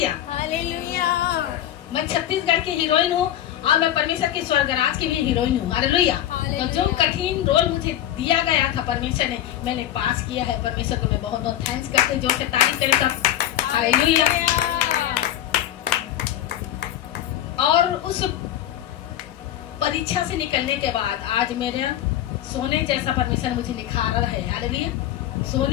hallelujah. मैं छत्तीसगढ़ की हीरोइन हूँ और मैं परमेश्वर के स्वर्ग राज की भी हीरोइन हूँ। हालेलुया। तो जो कठिन रोल मुझे दिया गया था परमेश्वर ने, मैंने पास किया है। परमेश्वर को मैं बहुत बहुत थैंक्स करते, जो से तारीफ करें सब। हालेलुया। और उस परीक्षा से निकलने के बाद आज मेरे सोने जैसा परमेश्वर मुझे निखारा है। हालेलुया।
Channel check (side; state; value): right; quieter; 12.1 dB